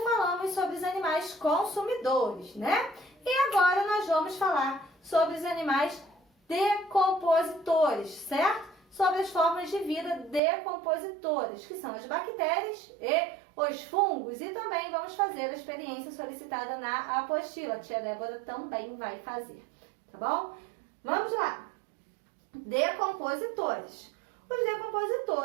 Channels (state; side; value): drops out; left; at 10.4 s